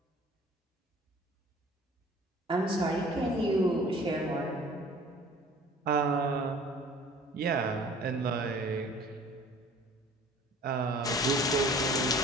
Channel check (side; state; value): both; normal; correlation 0.48